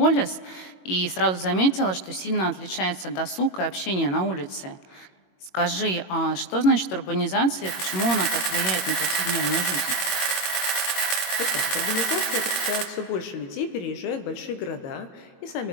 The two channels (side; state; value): right; late; 21 ms